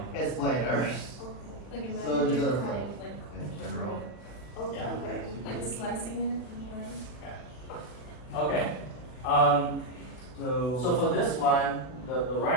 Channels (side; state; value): right; late; 40 ms